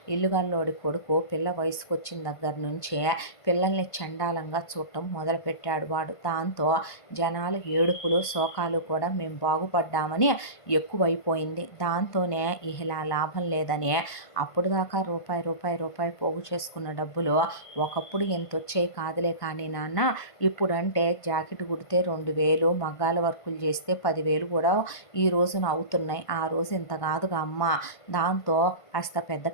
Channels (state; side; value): late; right; 1.5 ms